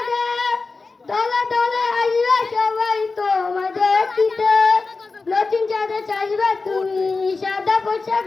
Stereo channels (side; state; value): right; quieter; 4.0 dB